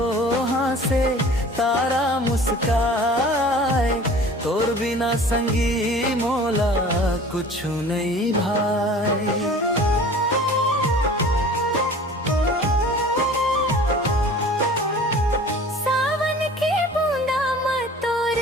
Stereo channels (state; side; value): normal; both; correlation 0.44